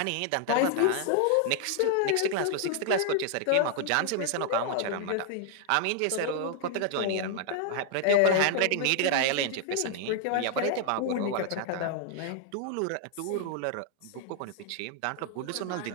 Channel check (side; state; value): both; different; correlation 0.00